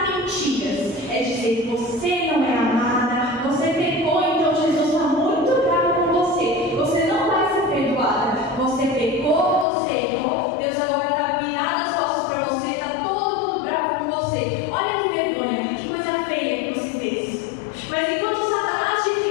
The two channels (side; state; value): right; drops out; at 9.7 s